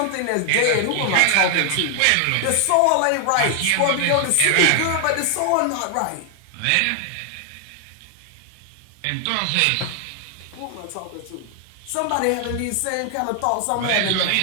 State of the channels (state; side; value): different; both; correlation 0.00